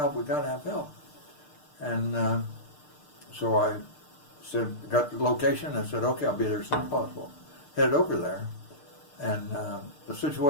we got to have help. And so I said, got the location, I said, okay, I'll be there as soon as possible. Headed over there, and the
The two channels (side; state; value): right; late; 6.6 ms